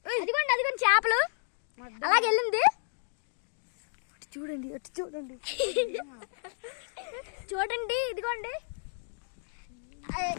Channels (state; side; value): silent; right; digital silence